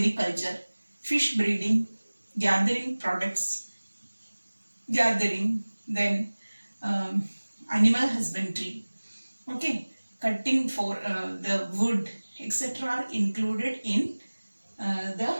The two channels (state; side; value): inverted; both; correlation -1.00